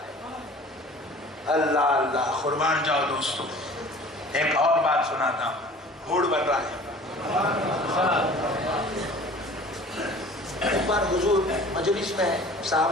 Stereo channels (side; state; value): both; normal; correlation 0.45